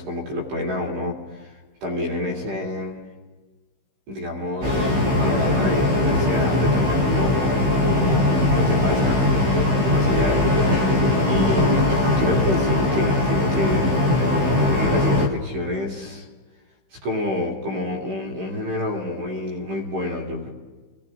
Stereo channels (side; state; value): left; late; 15 ms